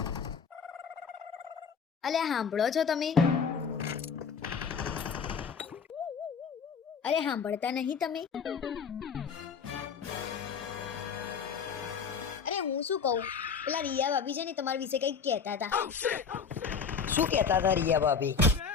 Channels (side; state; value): right; quieter; 6.0 dB